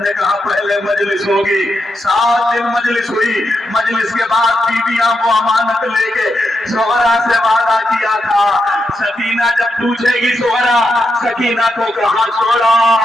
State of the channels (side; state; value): both; normal; correlation 0.84